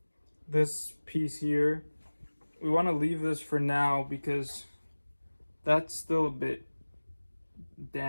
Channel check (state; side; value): inverted; both; correlation -1.00